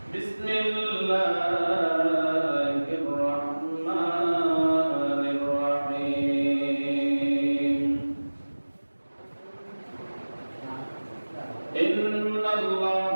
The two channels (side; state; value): both; inverted; correlation -1.00